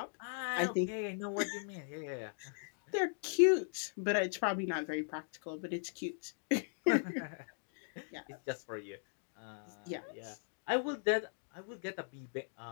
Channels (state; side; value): silent; right; digital silence